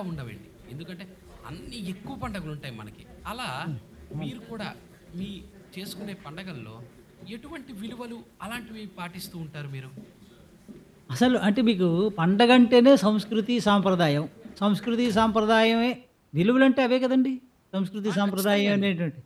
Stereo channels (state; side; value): identical; both; correlation 1.00